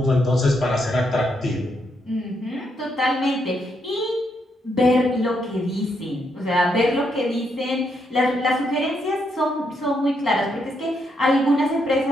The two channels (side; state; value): both; normal; correlation 0.78